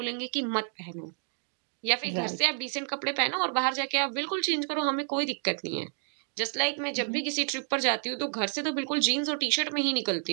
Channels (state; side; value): silent; left; 56 dB below the other